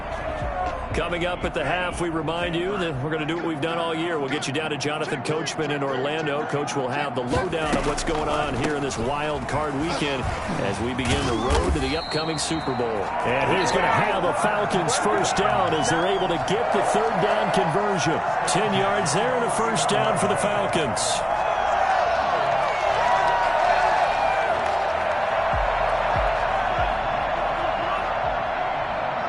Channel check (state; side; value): identical; both; correlation 1.00